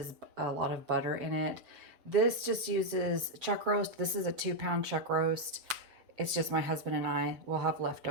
a lot of butter in it. This just uses chuck roast. This is a 2-pound chuck roast. It's just my husband and I will have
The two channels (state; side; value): late; left; 7.3 ms